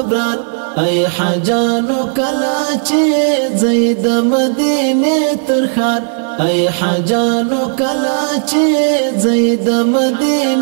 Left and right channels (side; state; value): left; silent; digital silence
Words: ای حجانو کلا چه زید مدینه ترخار ای حجانو کلا چه زید